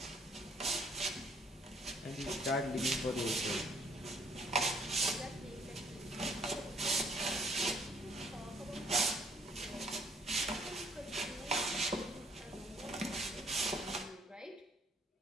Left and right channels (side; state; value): both; normal; correlation 0.64